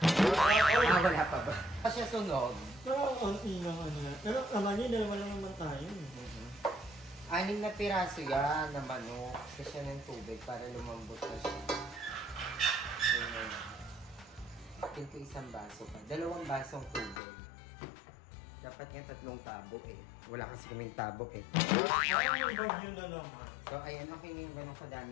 pa ba? Pa siya sunog. Pero, konti lang yan. Pero, naman dalawa lang naman tayo. 6 na piraso yan na manok. Kasi siya ng tubig para lumambot na siya. Akin ko 1 baso pa. 2 basong tubig. Dapat nga 3 tabo eh. Wala kasi kaming tabo eh. Parang may bagyo na naman. So, ayan, okay na yung gano'ng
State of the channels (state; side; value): drops out; right; at 17.2 s